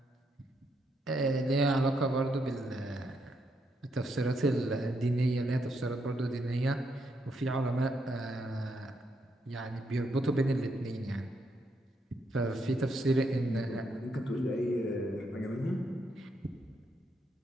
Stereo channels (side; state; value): both; normal; correlation 0.78